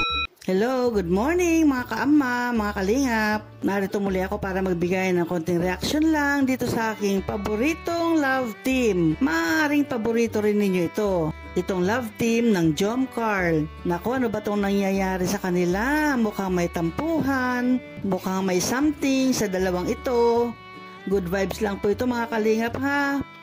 Hello, good morning mga kaama, mga kalingap. Narito muli ako para magbigay ng konting reaction lang dito sa aking paboritong love team. Maaaring paborito rin ninyo ito. Itong love team ng Jom Carl. Naku, ano ba itong nangyayari sa kanila? Mukhang may tampuhan, mukhang may something sa dalawang ito. Good vibes lang po ito mga kalingap ha.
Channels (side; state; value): both; identical; correlation 1.00